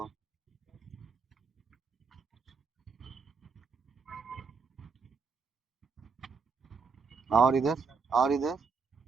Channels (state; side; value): quieter; left; 5.2 dB